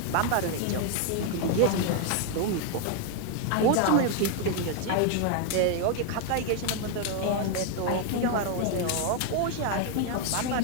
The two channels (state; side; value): different; both; correlation 0.00